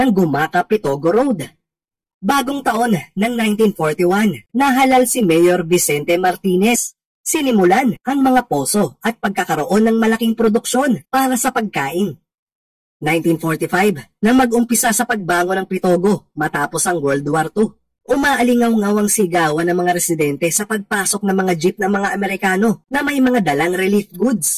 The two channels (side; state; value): both; identical; correlation 1.00